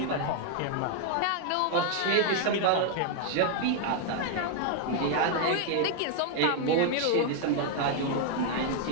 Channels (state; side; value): different; both; correlation 0.00